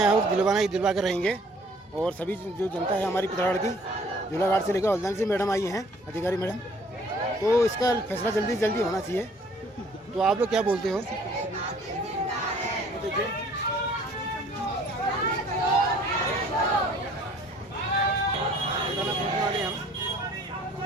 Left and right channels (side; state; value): both; normal; correlation 0.56